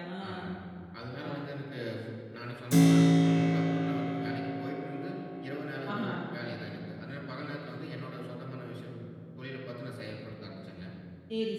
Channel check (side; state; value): both; identical; correlation 1.00